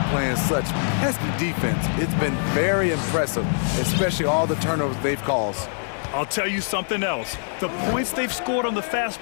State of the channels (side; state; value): right; silent; digital silence